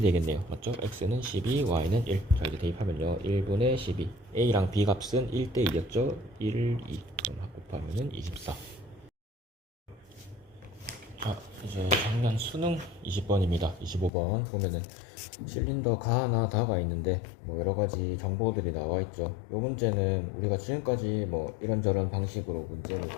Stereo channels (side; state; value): right; drops out; at 14.1 s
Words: 맞죠? x는 12, y는 1. 자, 이제 대입하면요. 1분의 12. a랑 b 값은 1대 2였죠? 1, 2. 그럼 곱하면은 24. 자, 이제 작년 수능 20번입니다. 25번 보면은 실린더 가 하나 다가 있는데 뭐 여러가지 정보들이 나와 있죠. 요 문제는 우리가 지금까지 뭐 이런저런 방식으로 문제를